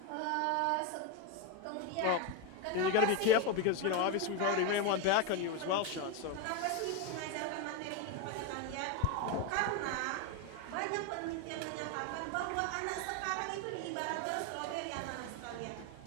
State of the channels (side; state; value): both; different; correlation 0.03